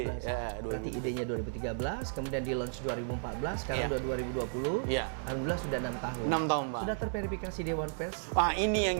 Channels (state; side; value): silent; left; digital silence